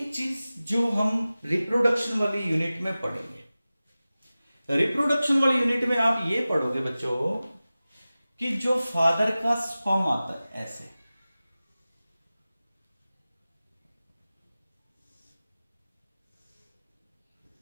चीज जो हम रिप्रोडक्शन वाली यूनिट में पढ़ेंगे। रिप्रोडक्शन वाली यूनिट में आप ये पढ़ोगे बच्चों कि जो फादर का स्पर्म आता है ऐसे,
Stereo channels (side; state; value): both; inverted; correlation -0.96